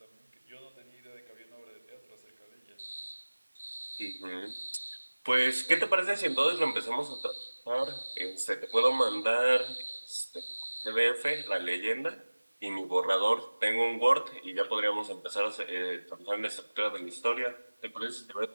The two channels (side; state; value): both; inverted; correlation -1.00